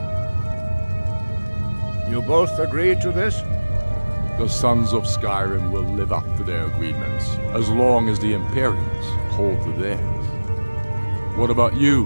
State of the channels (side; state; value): both; inverted; correlation -1.00